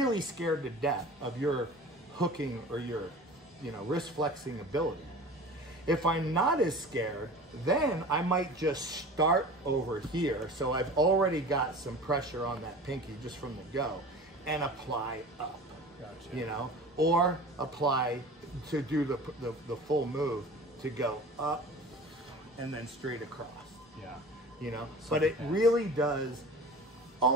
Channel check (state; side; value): normal; both; correlation 0.38